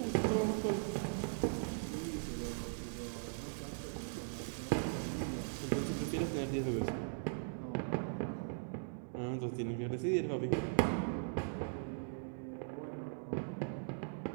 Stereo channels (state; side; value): silent; left; digital silence